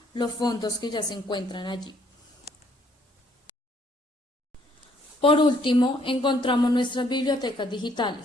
los fondos que ya se encuentran allí. Por último, encontramos nuestras bibliotecas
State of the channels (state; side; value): normal; both; correlation 0.65